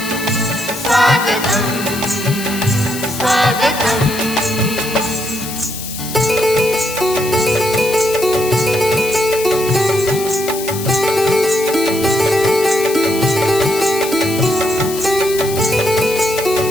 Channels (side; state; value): left; noise; hiss, 9 dB below the sound